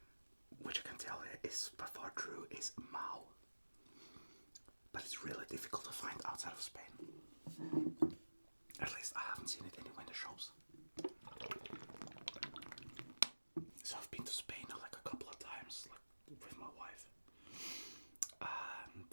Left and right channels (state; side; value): inverted; both; correlation -1.00